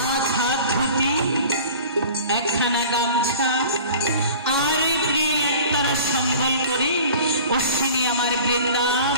হাত ধুতি, একখানা গামছা আর প্রিয় একতারা সম্বল করে অশ্বিনী আমার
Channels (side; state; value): both; inverted; correlation -0.43